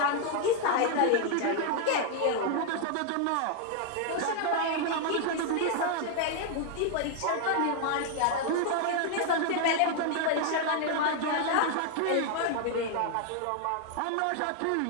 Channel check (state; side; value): different; both; correlation 0.00